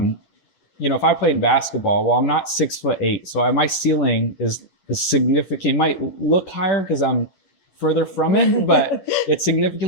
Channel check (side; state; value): right; late; 11 ms